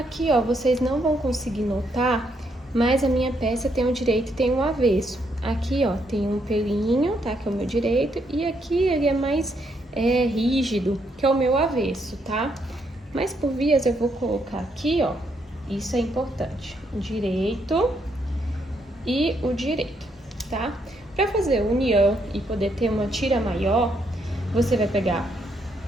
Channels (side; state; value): both; normal; correlation 0.75